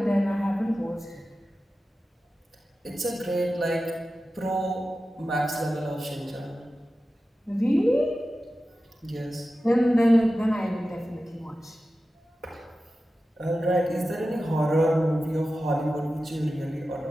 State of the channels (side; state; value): both; normal; correlation 0.94